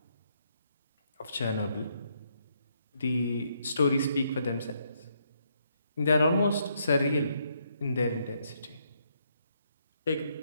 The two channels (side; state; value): both; inverted; correlation -0.74